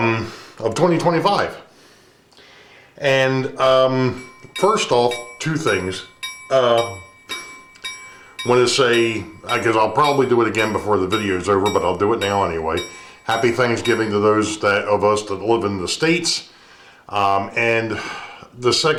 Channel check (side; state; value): both; identical; correlation 1.00